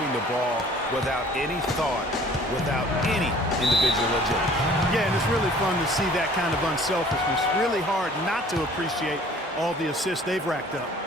the ball without any thought, without any individual agility. Yeah, and it's really fun to see that kind of unselfishness. Really hard not to appreciate all the assists they've racked up.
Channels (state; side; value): normal; both; correlation 0.52